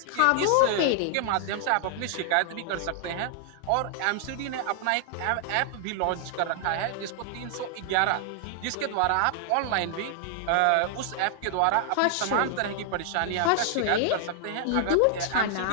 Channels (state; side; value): different; both; correlation 0.00